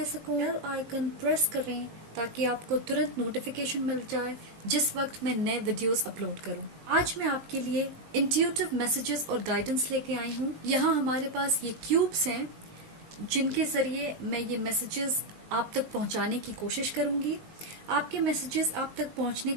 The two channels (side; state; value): left; late; 19 ms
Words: सकूं। बेल आइकन प्रेस करें ताकि आपको तुरंत नोटिफिकेशन मिल जाए जिस वक्त मैं नए वीडियोस अपलोड करूं। आज मैं आपके लिए इंट्यूटिव मैसेजेस और गाइडेंस लेके आई हूं। यहाँ हमारे पास ये क्यूब्स हैं जिनके जरिए मैं ये मैसेजेस आप तक पहुंचाने की कोशिश करूंगी। आपके मैसेजेस आप तक पहुंचने